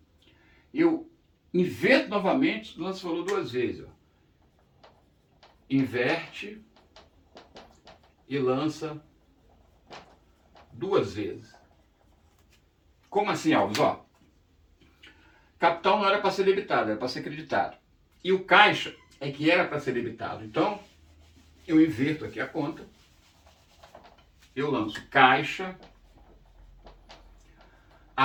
Eu inverto novamente, lanço o valor 2 vezes. Ó. Inverte e lança 2 vezes. Como assim, Alves? Ó, capital não era para ser debitado, era para ser creditado. E o caixa é que era para ser debitado. Então, eu inverto aqui a conta. Eu lanço caixa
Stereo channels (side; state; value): both; identical; correlation 1.00